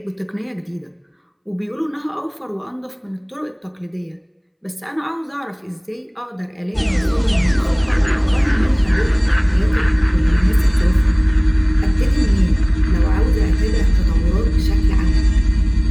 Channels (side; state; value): both; identical; correlation 1.00